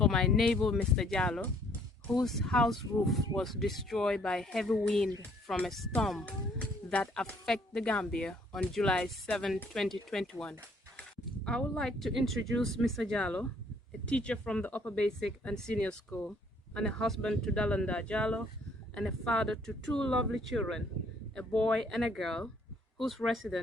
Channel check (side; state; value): both; normal; correlation 0.63